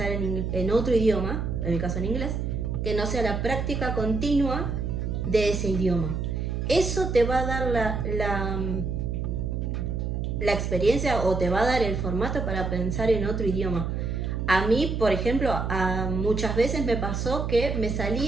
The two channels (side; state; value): right; noise; hum, 2 dB below the sound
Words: en otro idioma, en mi caso en inglés, que no sea la práctica continua de ese idioma. Eso te va a dar la experiencia o te va a dar el formato para pensar en otro idioma. A mí, por ejemplo, muchas veces me pasó que me